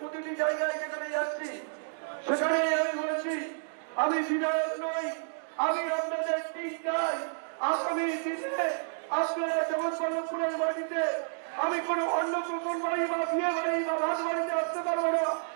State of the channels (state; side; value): silent; left; digital silence